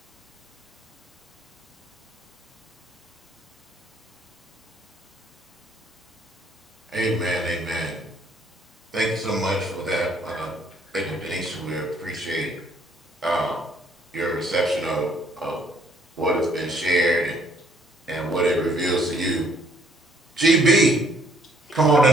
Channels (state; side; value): normal; both; correlation 0.64